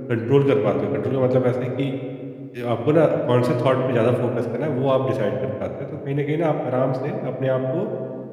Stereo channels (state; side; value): identical; both; correlation 1.00